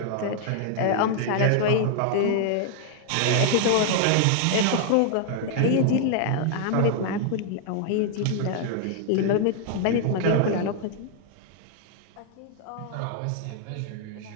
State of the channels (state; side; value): different; both; correlation 0.00